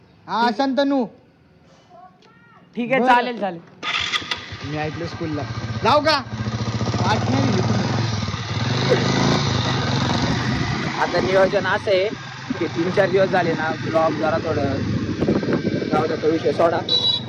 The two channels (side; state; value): both; identical; correlation 1.00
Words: हा शांतनू. ठीक आहे चालेल चालेल. मी ऐकलं स्कूलला जाऊ का? आठ नाही. आता नियोजन असं आहे की 3-4 दिवस झाले ना ब्लॉग जरा थोडं जाऊ द्या, तो विषय सोडा.